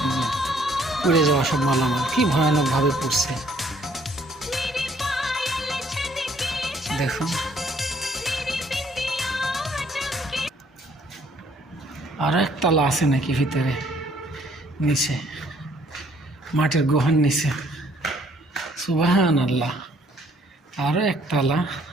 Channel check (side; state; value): both; normal; correlation 0.63